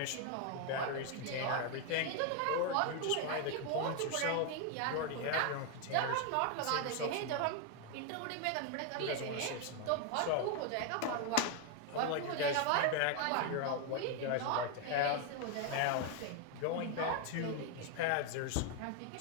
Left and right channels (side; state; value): both; different; correlation 0.01